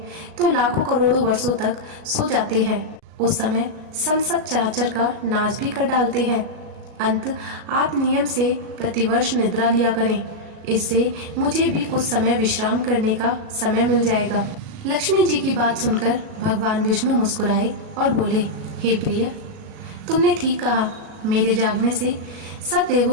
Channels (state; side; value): late; left; 38 ms